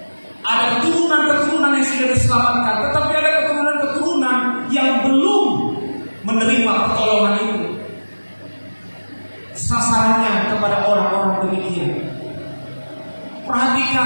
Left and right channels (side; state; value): both; inverted; correlation -1.00